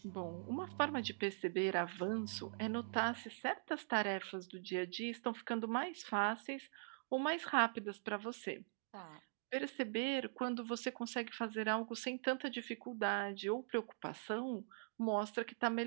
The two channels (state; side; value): silent; left; digital silence